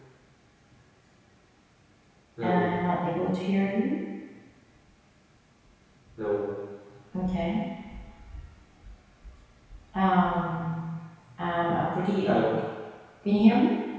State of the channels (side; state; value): both; identical; correlation 1.00